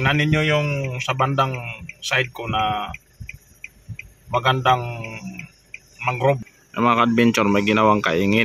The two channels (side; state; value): both; identical; correlation 1.00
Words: ninyo yung sa bandang side ko na magandang mangrove. Mga adventure, may ginawang